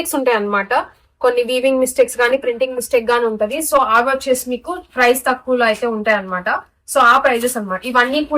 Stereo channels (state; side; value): identical; both; correlation 1.00